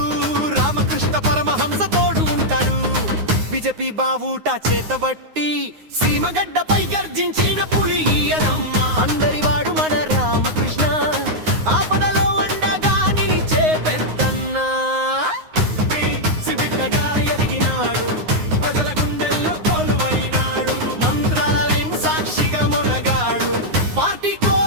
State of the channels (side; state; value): left; late; 9.6 ms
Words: రామకృష్ణ పరమహంస తోడు ఉంటాడు. బీజేపీ బావుట చేతబట్టి సీమగడ్డపై గర్జించిన పులి ఈయనమ్మ. అందరి వాడు మన రామకృష్ణ, ఆపదలో అండగా నిలిచే పెద్దన్న. బిడ్డగా ఎదిగినాడు, ప్రజల గుండెల్లో కొలువైనాడు, మంత్రాలయం సాక్షిగా మొనగాడు, పార్టీ